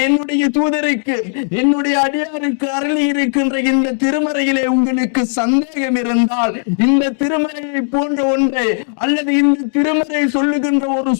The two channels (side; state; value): right; silent; digital silence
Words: என்னுடைய தூதருக்கு, என்னுடைய அடியாருக்கு அருளி இருக்கின்ற இந்த திருமறையிலே உங்களுக்கு சந்தேகம் இருந்தால், இந்த திருமறையை போன்ற ஒன்றை அல்லது இந்த திருமறை சொல்லுகின்ற ஒரு